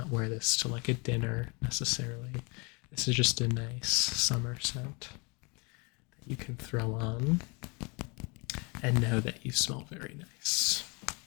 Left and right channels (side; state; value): right; quieter; 30.2 dB